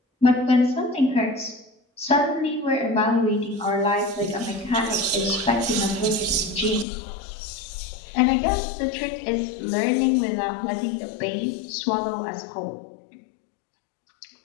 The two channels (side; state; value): right; drops out; at 6.9 s